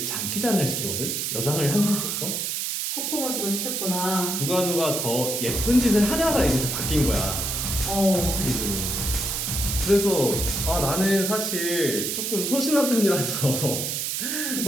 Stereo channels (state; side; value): noise; right; hiss, 1 dB below the sound